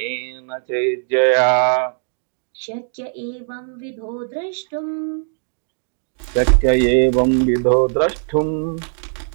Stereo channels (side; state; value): left; silent; digital silence